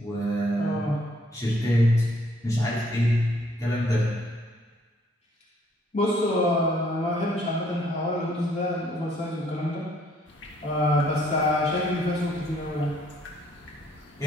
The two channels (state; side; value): normal; both; correlation 0.65